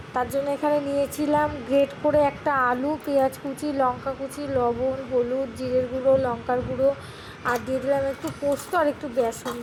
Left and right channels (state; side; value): identical; both; correlation 1.00